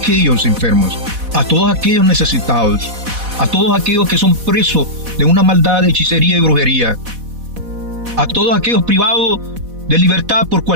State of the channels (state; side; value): late; left; 4.1 ms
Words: enfermos, a todos aquellos necesitados, a todos aquellos que son presos de una maldad de hechicería y brujería, a todos aquellos privados de libertad por